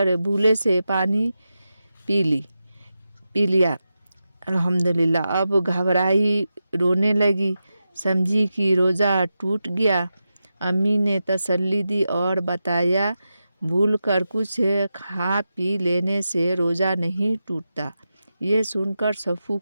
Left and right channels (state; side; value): inverted; both; correlation -0.90